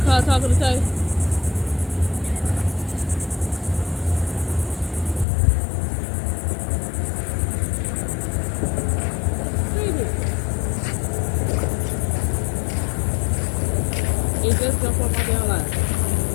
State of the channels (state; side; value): drops out; right; at 5.2 s